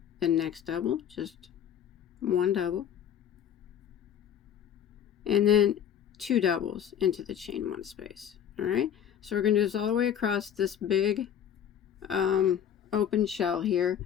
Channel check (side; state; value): right; quieter; 9.3 dB